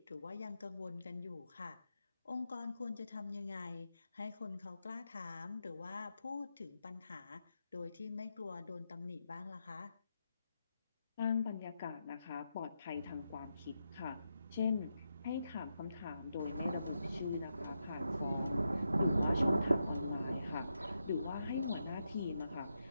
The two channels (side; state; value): both; inverted; correlation -0.85